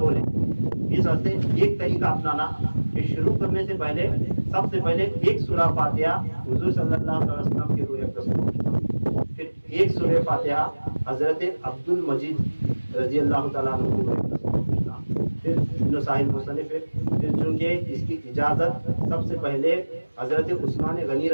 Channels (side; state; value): both; inverted; correlation -1.00